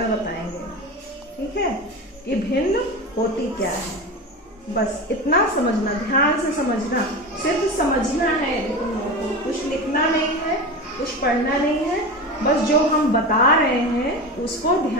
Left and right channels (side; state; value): both; normal; correlation 0.26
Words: बताएंगे। ठीक है, ये भिन्न होती क्या है, बस इतना समझना, ध्यान से समझना, सिर्फ समझना है। तुम लोगों को कुछ लिखना नहीं है, कुछ पढ़ना नहीं है, बस जो हम बता रहे हैं उसको